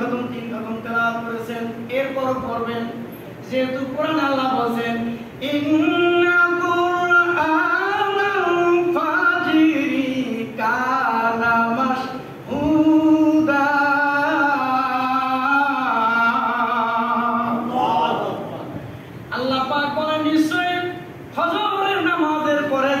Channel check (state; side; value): identical; both; correlation 1.00